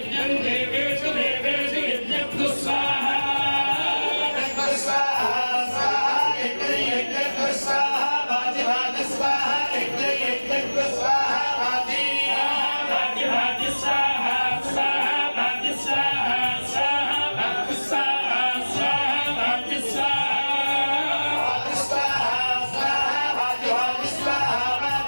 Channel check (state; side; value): inverted; both; correlation -1.00